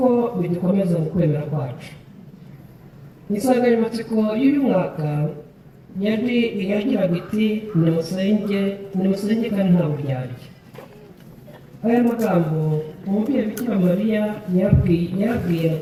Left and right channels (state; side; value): identical; both; correlation 1.00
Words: bidukomeza mu kwemera kwacu. Insanganyamatsiko y'uyu mwaka yagiraga iti nimusenge kandi nta buryarya. Aya magambo umubyeyi Bikira Mariya yabwiye